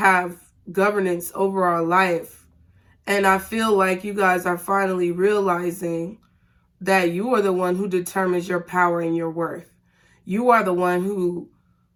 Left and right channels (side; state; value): both; identical; correlation 1.00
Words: governance over our life. And I feel like you guys are finally realizing that you are the one who determines your power and your worth. You are the one who